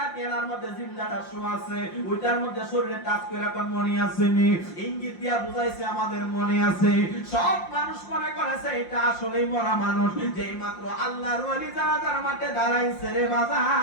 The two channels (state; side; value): late; right; 5.7 ms